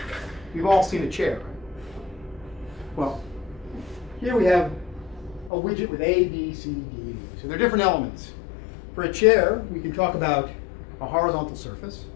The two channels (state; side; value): drops out; right; at 5.5 s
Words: You've all seen a chair, right? Well, here we have a widget with A, B, C, D, and E. So there are different elements. For a chair, we can talk about a horizontal surface,